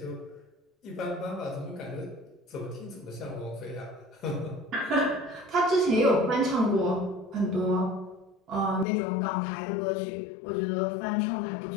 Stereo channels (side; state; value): right; drops out; at 8.8 s